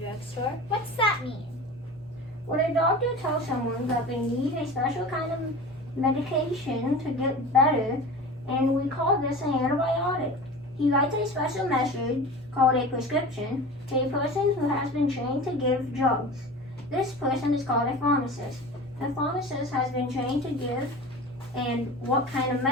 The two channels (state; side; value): normal; both; correlation 0.35